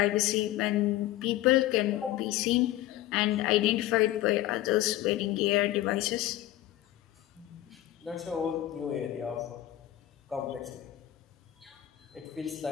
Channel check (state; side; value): quieter; right; 14.4 dB